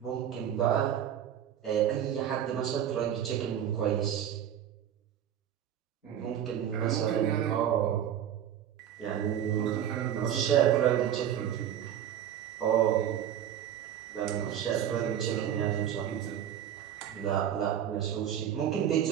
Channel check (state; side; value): quieter; left; 10.0 dB